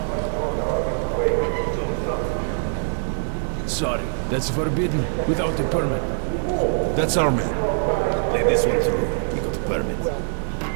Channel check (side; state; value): left; silent; digital silence